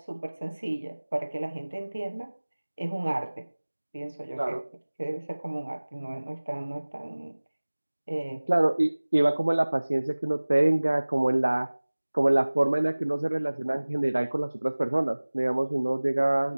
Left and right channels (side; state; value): both; inverted; correlation -1.00